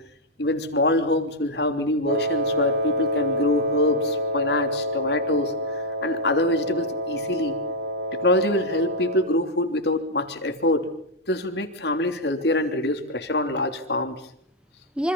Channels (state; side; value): normal; both; correlation -0.03